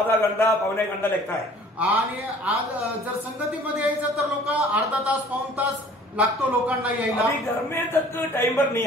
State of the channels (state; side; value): normal; both; correlation 0.51